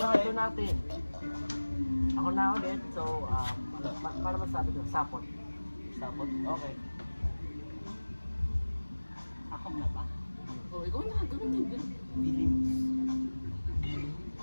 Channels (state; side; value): inverted; both; correlation -1.00